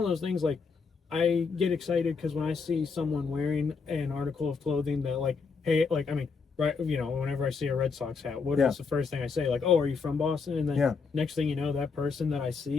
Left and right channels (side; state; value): right; quieter; 5.0 dB